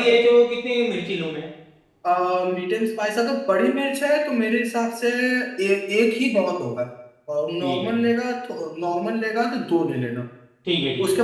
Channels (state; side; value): identical; both; correlation 1.00